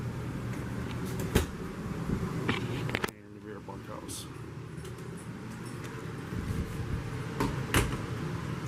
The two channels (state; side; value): identical; both; correlation 1.00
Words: And the rear bunkhouse.